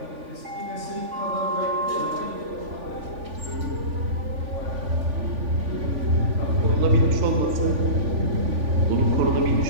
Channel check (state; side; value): late; left; 3.5 ms